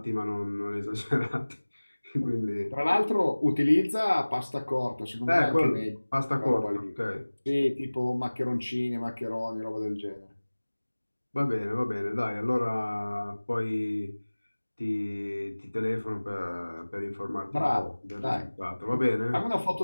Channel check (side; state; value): both; inverted; correlation -1.00